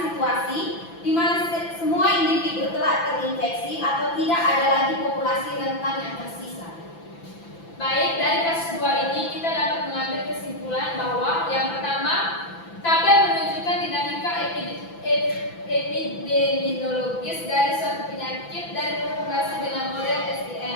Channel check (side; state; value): right; late; 6.0 ms